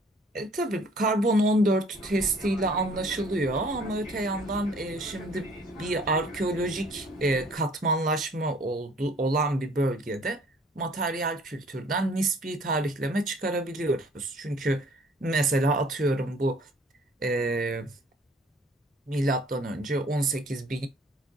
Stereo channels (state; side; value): normal; both; correlation 0.55